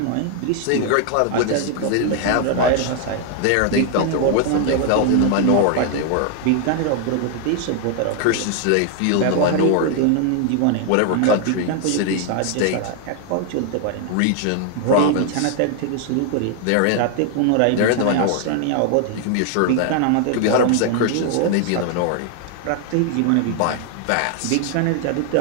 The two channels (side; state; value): both; different; correlation 0.00